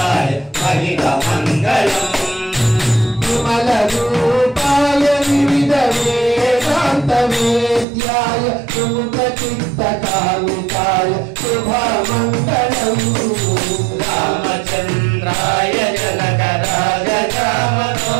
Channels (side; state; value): left; drops out; at 7.9 s